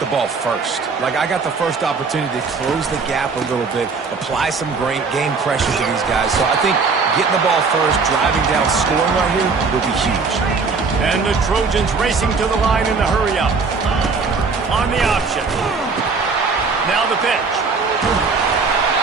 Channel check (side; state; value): left; quieter; 4.7 dB